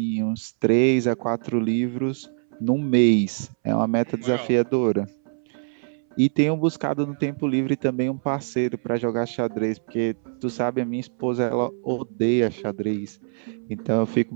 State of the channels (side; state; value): left; silent; 63 dB below the other